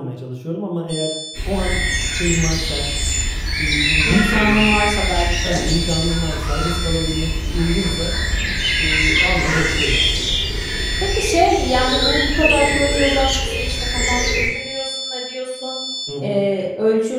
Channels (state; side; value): identical; both; correlation 1.00